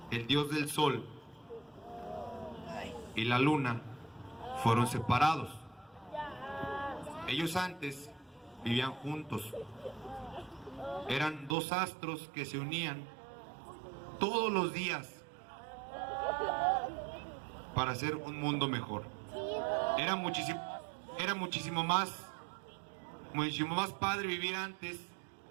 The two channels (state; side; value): drops out; left; at 11.6 s